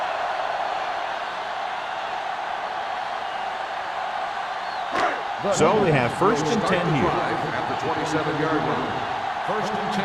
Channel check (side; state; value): both; identical; correlation 1.00